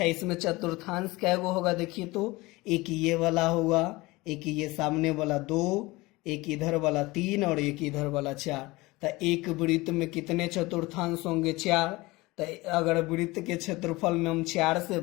इसमें चतुर्थांश क्या वो होगा, देखिए तो एक ये वाला होगा, एक ये सामने वाला 2, एक इधर वाला 3 और एक इधर वाला 4। तो एक वृत्त में कितने चतुर्थांश होंगे, 4। तो अगर वृत्त के क्षेत्रफल में हम 4 से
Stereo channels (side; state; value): right; quieter; 21.5 dB